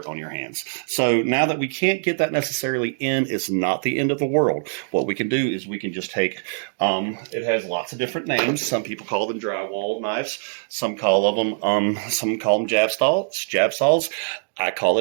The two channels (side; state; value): left; silent; digital silence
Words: on your hands. So now that we can't get that necessarily in, it's not the end of the world. What we can do is we can just take, it has lots of different names. Some people call them drywall knives. Some call them jab saws. I call